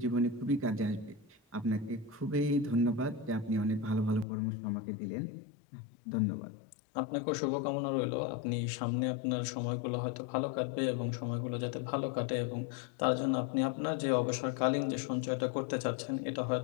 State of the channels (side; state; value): right; drops out; at 4.2 s